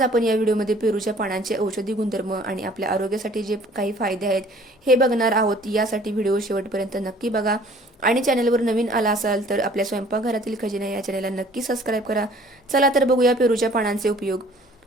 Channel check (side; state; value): both; normal; correlation 0.54